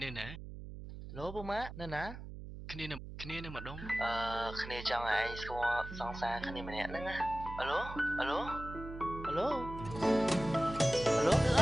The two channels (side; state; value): right; noise; hum, 11 dB below the sound